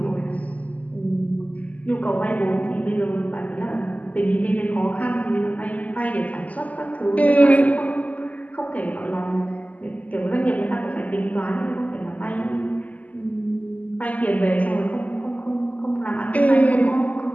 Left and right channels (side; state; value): right; late; 0.075 ms